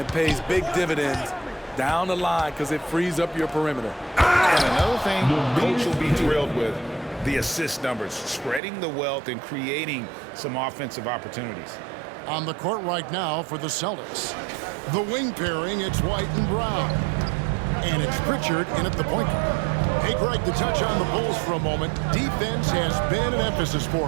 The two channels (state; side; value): drops out; left; at 8.6 s